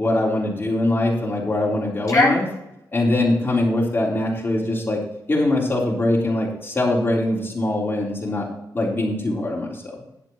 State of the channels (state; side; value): normal; both; correlation 0.84